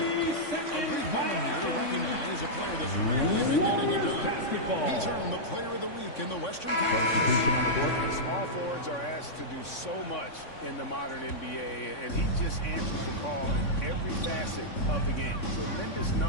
A brief moment here to recognize a player that's really been getting it done. He's earned the Player of the Week in the Western Conference. And small forwards are asked to do so much in the modern NBA, and he just answers the call in every facet of the game. Tremendous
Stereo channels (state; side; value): late; right; 3.5 ms